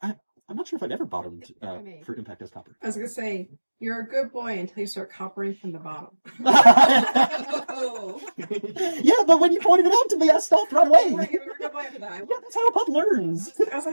not sure if I've ever bottomed for impact as Copper. I was going to say, you're a good boy until you start coppering from the bottom. Yeah, but when you pointed it out to me, I stopped right away. You're a good boy after that. Yeah, that's how a pup learns. I was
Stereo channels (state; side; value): inverted; both; correlation -1.00